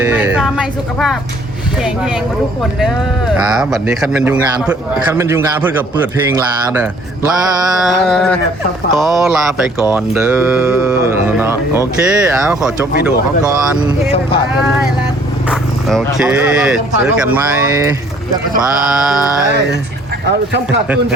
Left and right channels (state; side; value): normal; both; correlation 0.58